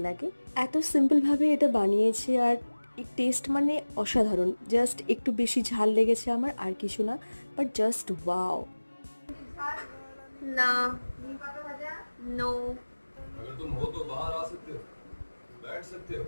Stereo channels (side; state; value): both; inverted; correlation -1.00